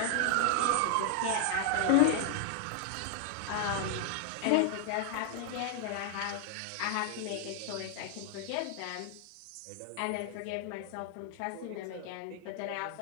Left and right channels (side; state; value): both; different; correlation 0.00